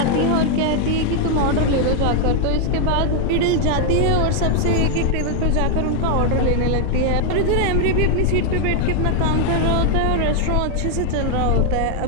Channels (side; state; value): both; different; correlation 0.00